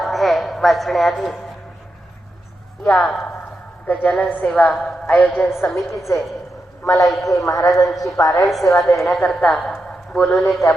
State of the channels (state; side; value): normal; both; correlation 0.87